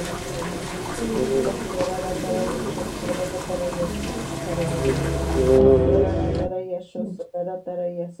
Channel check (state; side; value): identical; both; correlation 1.00